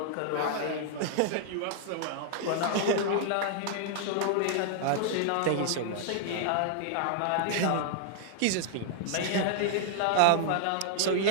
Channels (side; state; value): both; different; correlation -0.01